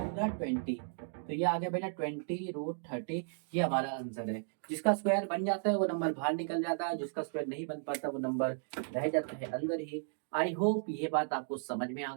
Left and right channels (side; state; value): left; silent; digital silence